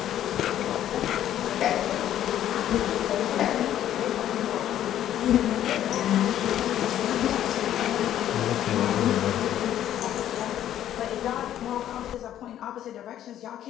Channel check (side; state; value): right; quieter; 11.5 dB